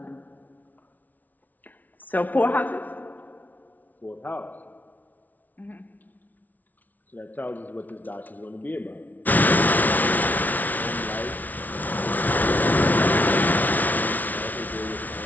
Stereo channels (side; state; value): right; late; 0.078 ms